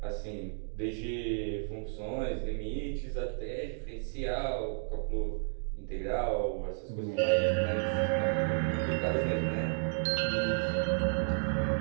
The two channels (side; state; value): left; silent; digital silence